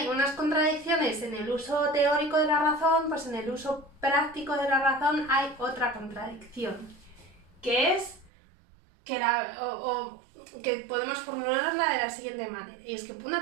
unas contradicciones en el uso teórico de la razón, pues en el uso práctico de la razón hay otra contradicción, que es que que podemos formularla de la siguiente manera, y es que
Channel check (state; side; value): drops out; left; at 8.3 s